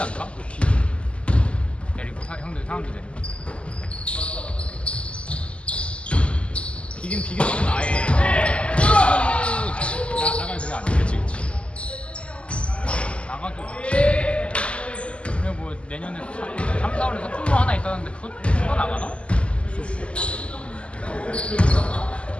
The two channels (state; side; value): late; right; 0.056 ms